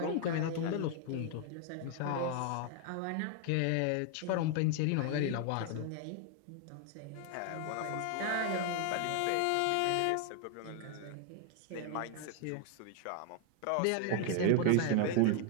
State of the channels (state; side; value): different; both; correlation 0.00